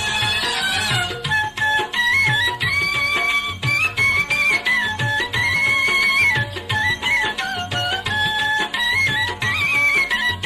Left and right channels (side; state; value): both; identical; correlation 1.00